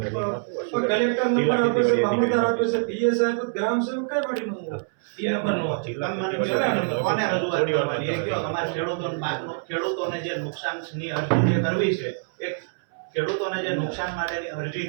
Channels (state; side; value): silent; left; 62 dB below the other